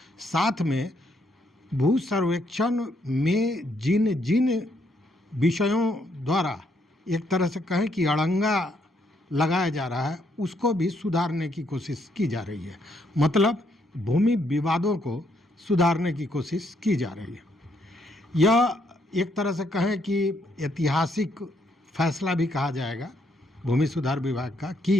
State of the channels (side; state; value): both; normal; correlation 0.74